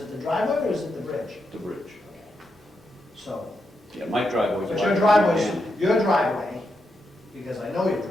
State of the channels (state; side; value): normal; both; correlation 0.84